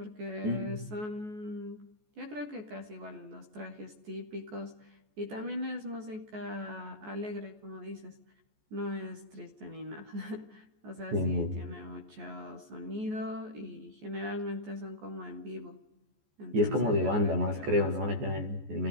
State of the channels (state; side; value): late; left; 14 ms